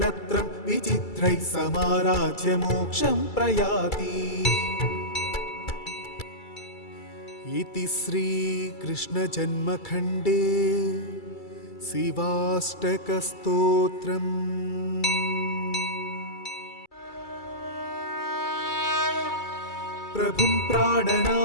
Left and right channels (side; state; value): right; late; 2.3 ms